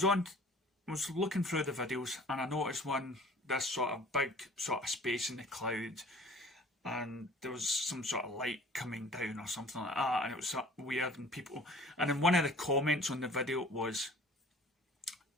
looking through the videos and I noticed this sort of big sort of space in the clouds, and there was some sort of light coming down or something like that, and it was sort of weird, and then one of the comments on the video was,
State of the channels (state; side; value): normal; both; correlation 0.48